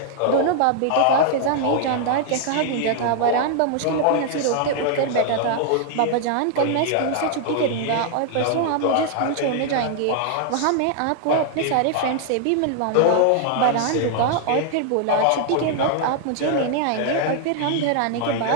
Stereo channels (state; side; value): different; both; correlation 0.00